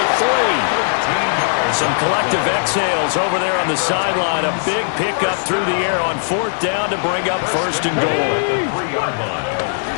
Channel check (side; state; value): right; silent; digital silence